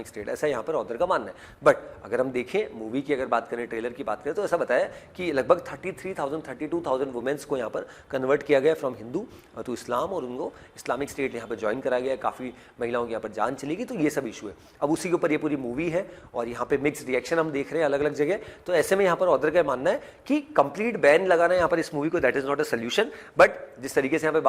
state, ऐसा यहाँ पर ऑथर का मानना है। बट अगर हम देखें मूवी की अगर बात करें, ट्रेलर की बात करें, तो ऐसा बताया कि लगभग 33,000 32,000 वुमेन्स को यहाँ पर कन्वर्ट किया गया फ्रॉम हिंदू टू इस्लाम, और उनको इस्लामिक स्टेट यहाँ पर ज्वाइन कराया गया। काफ़ी महिलाओं की यहाँ पर जान चली गई, तो ये सब इशू है। अब उसी के ऊपर ये पूरी मूवी है और यहाँ पे मिक्स रिएक्शन हम देख रहे हैं अलग अलग जगह। तो ऐसे में यहाँ पर ऑथर का मानना है कि कंप्लीट बैन लगाना यहाँ पर इस मूवी को, that is not a solution. But जिस तरीके से यहाँ पे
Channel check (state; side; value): identical; both; correlation 1.00